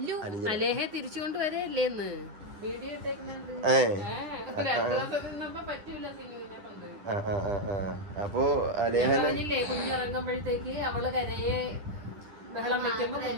തിരിച്ചുകൊണ്ട് വരല്ലേന്ന് അപ്പോ കുഞ്ഞിറങ്ങുമ്പോഴത്തേക്ക് അവള് കരയെ ബഹളം വെക്കുമ്പോ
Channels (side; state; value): left; late; 10 ms